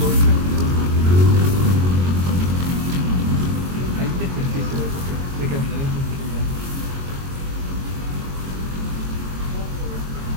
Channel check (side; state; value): left; late; 22 ms